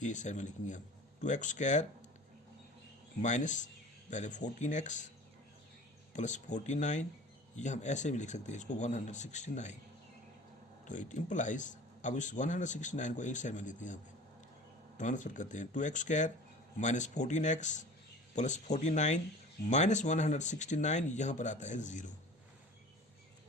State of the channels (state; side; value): normal; both; correlation 0.41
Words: ये इस साइड में लिखेंगे हम 2x स्क्वायर माइनस पहले 14x प्लस 49, ये हम ऐसे भी लिख सकते हैं इसको 169। तो इट इम्प्लाइज, अब इस 169 को एक साइड में लेते हैं, यहाँ पे ट्रांसफर करते हैं 2x square minus 14x plus 49 minus 169, यहाँ पर आता है 0।